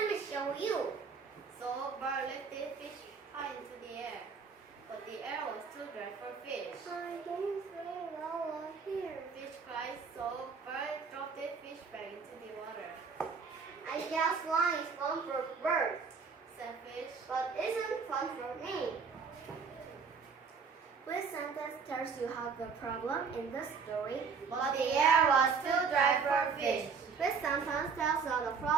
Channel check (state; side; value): quieter; left; 5.5 dB